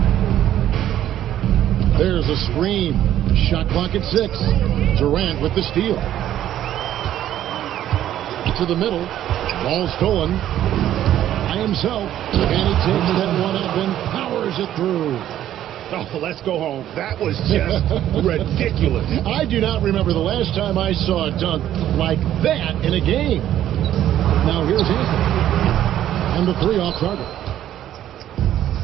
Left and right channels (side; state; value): left; quieter; 11.9 dB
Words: There's a screen. Shot clock at 6. Durant with the steal. To the middle. Ball stolen by himself. And he takes that one up and powers it through. Oh, let's go home. That was just ridiculous. I do not remember the last time I saw a dunk like that in a game. Now here's Anthony. And the 3 off target.